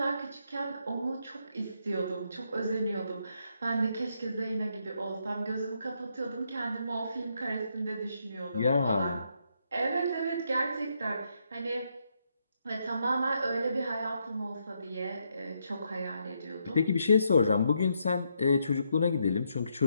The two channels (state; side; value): inverted; both; correlation -0.78